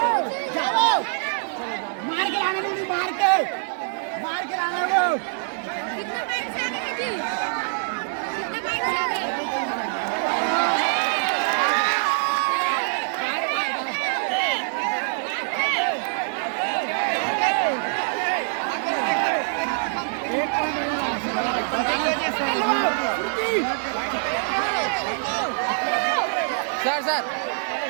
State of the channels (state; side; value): silent; left; digital silence